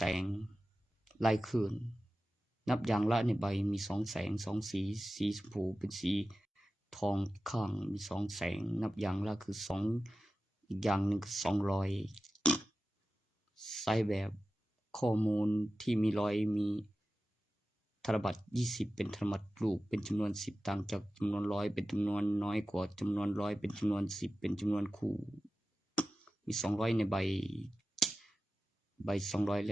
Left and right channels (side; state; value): both; normal; correlation 0.94